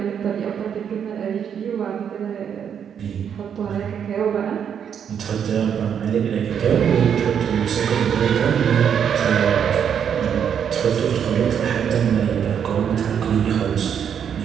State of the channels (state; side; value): quieter; left; 8.1 dB